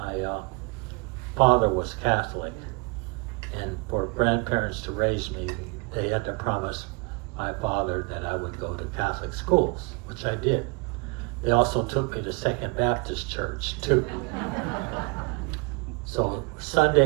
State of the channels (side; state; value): left; quieter; 30.2 dB